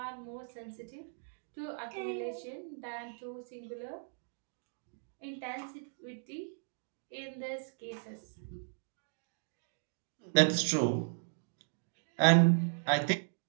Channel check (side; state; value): left; silent; digital silence